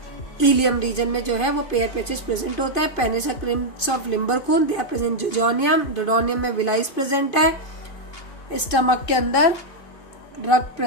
इलियम रीजन में जो है वो पेयर पैचेस प्रेजेंट होता है। Paneth crypts of Lieberkuhn they are present jejunum, duodenum में विलाइज प्रेजेंट है, स्टमक के अंदर रग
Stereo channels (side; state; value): right; late; 2.5 ms